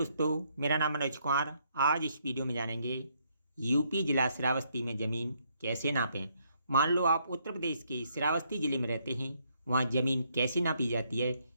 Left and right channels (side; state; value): both; inverted; correlation -0.72